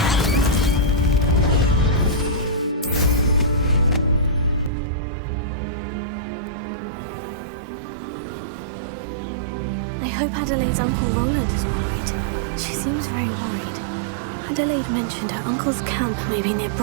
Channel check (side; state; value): left; drops out; at 4.7 s